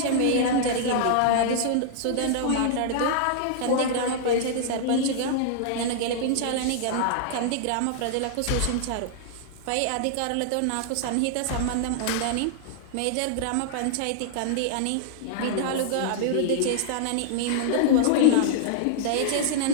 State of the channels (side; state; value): both; different; correlation -0.01